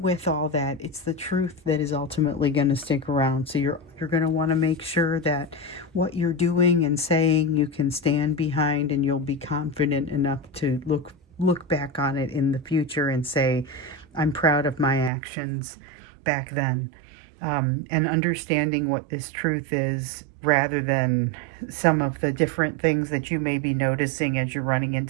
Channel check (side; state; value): left; drops out; at 15.1 s